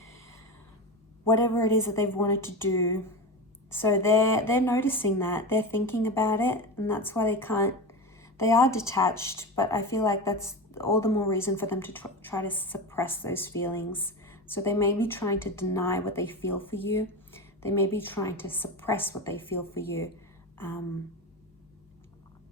whatever it is that they've wanted to do. So they're noticing that. They're thinking about it, and that's why they are detached, but I feel like that's all the more reason for them to try to suppress those feelings. So they may be trying to deny what they feel for you. They may be trying to suppress what they feel for you.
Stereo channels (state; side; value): normal; both; correlation 0.22